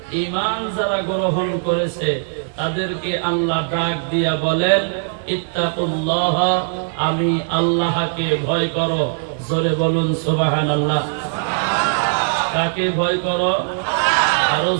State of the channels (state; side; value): silent; left; digital silence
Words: ঈমান যারা গ্রহণ করেছে তাদেরকে আল্লাহ ডাক দিয়া বলেন ইত্তাকুল্লাহ, আমি আল্লাহকে ভয় করো। জোরে বলুন সুবহানাল্লাহ। কাকে ভয় করো? আরো